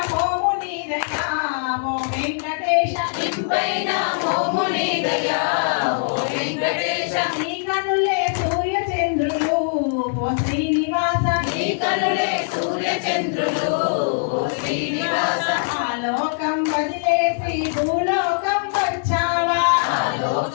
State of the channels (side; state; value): right; silent; digital silence